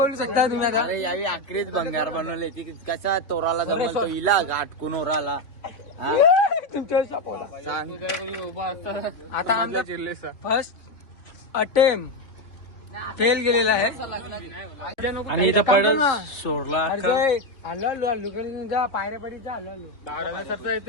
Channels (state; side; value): late; right; 3.2 ms